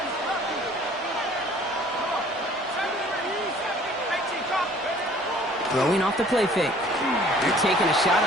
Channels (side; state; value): both; normal; correlation 0.53